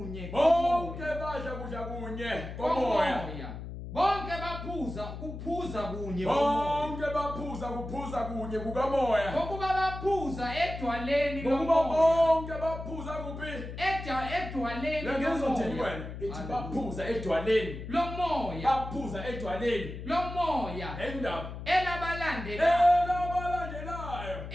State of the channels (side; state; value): left; noise; hum, 9 dB below the sound